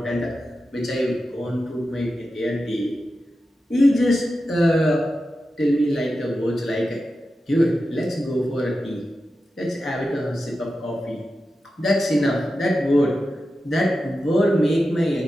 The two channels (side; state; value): both; normal; correlation 0.91